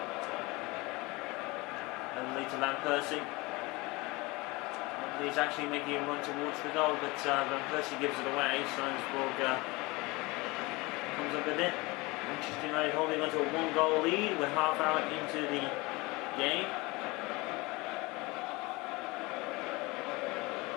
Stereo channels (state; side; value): quieter; right; 23.8 dB